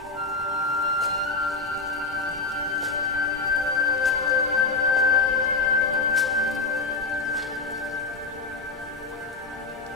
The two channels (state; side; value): quieter; right; 3.9 dB